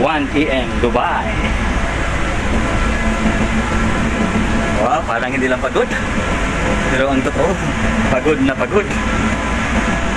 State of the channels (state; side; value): identical; both; correlation 1.00